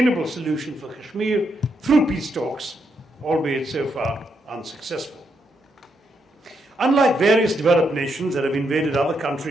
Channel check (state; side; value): normal; both; correlation 0.79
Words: solution for Kashmir through peace talks, albeit so far unsuccessful. Unlike various developed nations that have invaded other